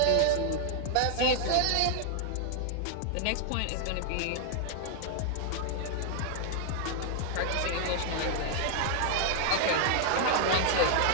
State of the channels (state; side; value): different; both; correlation 0.00